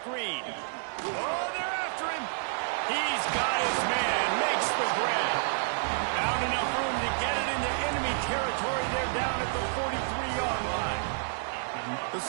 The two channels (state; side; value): silent; left; digital silence